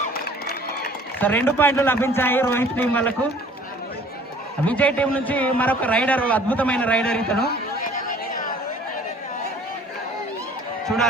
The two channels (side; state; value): both; normal; correlation 0.52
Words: So 2 పాయింట్లు లభించాయి రోహిత్ టీం వాళ్ళకు. విజయ్ టీం నుంచి మరొక రైడర్, అద్భుతమైన రైడర్ ఇతను.